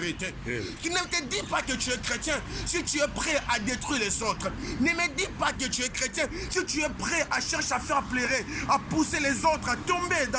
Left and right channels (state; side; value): identical; both; correlation 1.00